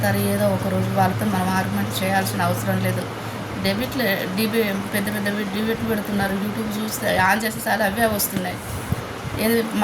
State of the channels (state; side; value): identical; both; correlation 1.00